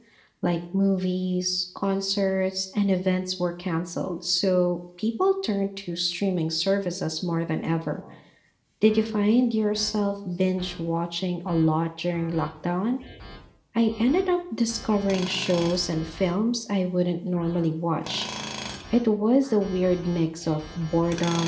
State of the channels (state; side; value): identical; both; correlation 1.00